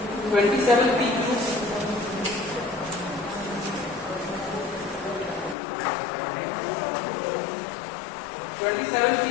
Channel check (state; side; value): drops out; right; at 5.6 s